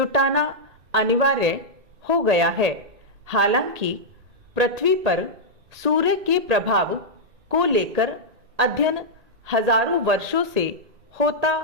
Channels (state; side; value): late; left; 1.8 ms